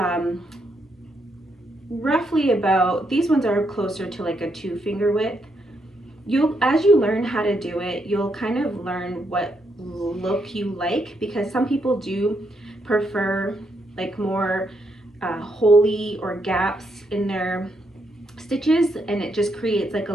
roughly about, these ones are closer to like a 2 finger width. As you learn how to do it, you'll kind of learn what look you like, because some people do prefer like more holey or gaps in their stitches, and it just creates like a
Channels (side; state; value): both; normal; correlation 0.78